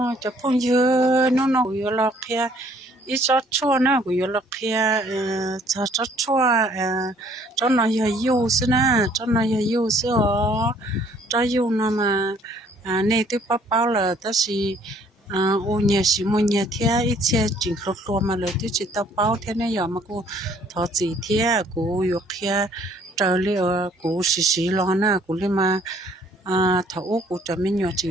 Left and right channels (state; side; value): normal; both; correlation 0.60